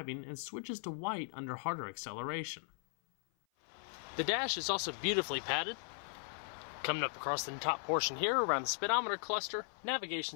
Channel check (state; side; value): silent; right; 53 dB below the other